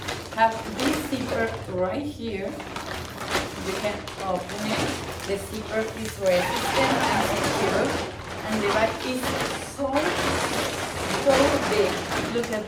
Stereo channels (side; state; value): both; identical; correlation 1.00